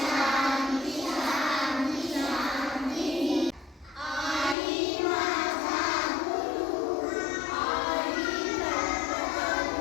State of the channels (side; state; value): right; drops out; at 4.5 s